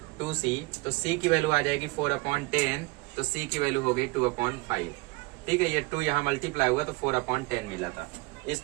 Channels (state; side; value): quieter; left; 25.3 dB